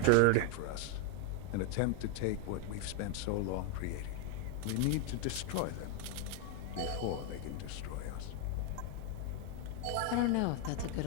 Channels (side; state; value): both; different; correlation 0.01